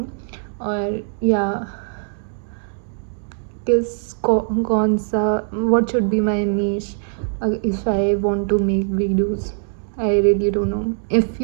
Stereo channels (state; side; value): silent; left; digital silence